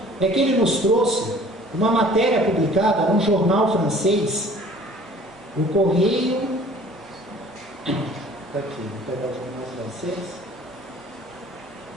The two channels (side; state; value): both; normal; correlation 0.50